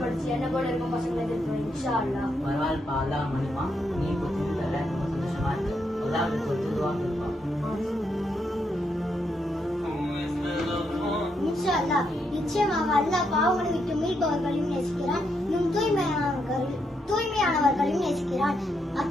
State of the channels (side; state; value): both; normal; correlation 0.79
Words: படிச்சு என்ன போல இருக்கும் பசங்களை எதிர்ப்போம். இன்ஷா அல்லாஹ். பரவாயில்லப்பா, அல்லாஹ் மன்னிப்பான். நீ இப்போ திருந்தல, ரொம்ப சந்தோஷமா இருக்கு. அல்லாஹ் ஒரு திருவாங்க இருப்பான். இன்ஷா அல்லாஹ், நிச்சயமாக அல்லாஹ் பாவங்களை விட்டு மீட்பவர்களையும் நேசிக்கிறான், இன்னும் தூய்மையானவர்களையும் நேசிக்கிறான்.